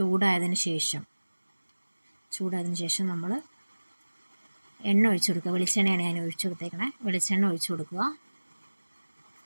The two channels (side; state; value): both; inverted; correlation -1.00